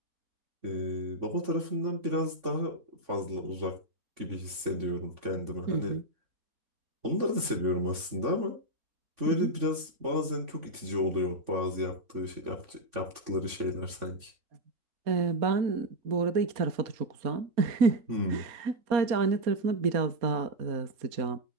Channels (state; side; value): late; left; 3.5 ms